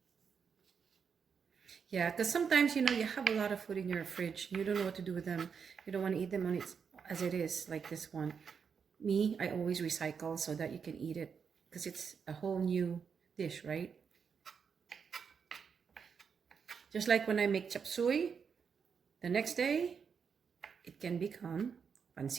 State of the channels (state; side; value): quieter; left; 6.4 dB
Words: Yeah, because sometimes, you have a lot of food in your fridge. You don't know what to do with them. You don't want to eat them as it is, like this one. Me, I always recycle so that you can eat it because it's a whole new dish, right? Just like when I make chop suey, the next day, it can become